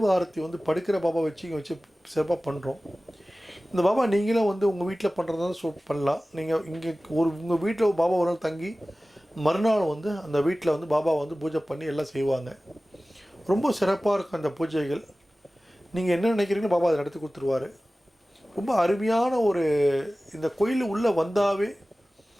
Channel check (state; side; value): normal; both; correlation 0.97